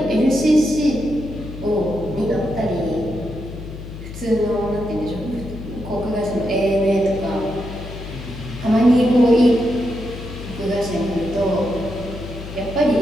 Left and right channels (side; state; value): left; noise; hum, 11 dB below the sound